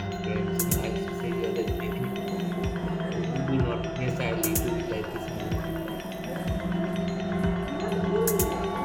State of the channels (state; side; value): identical; both; correlation 1.00